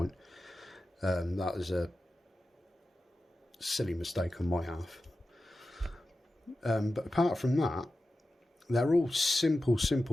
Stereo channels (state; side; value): normal; both; correlation 0.93